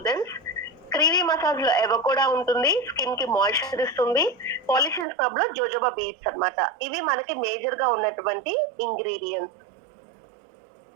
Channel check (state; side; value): drops out; left; at 5.1 s